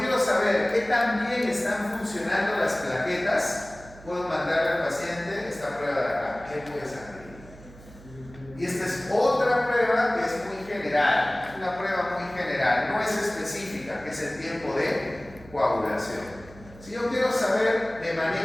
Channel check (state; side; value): noise; right; hum, 20 dB below the sound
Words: saber qué tan bien están funcionando las plaquetas, puedo mandarle al paciente esta prueba de acá, tiempo de sangría. Y esta es otra prueba que es muy general, una prueba muy general, no es específica, que es el tiempo de coagulación. Si yo quiero saber de